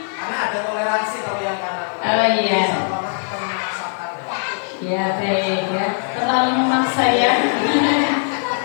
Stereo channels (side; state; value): right; silent; 66 dB below the other